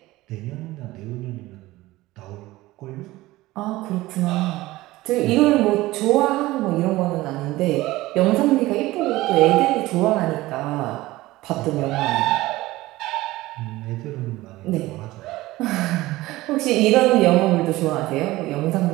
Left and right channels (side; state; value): left; quieter; 18.2 dB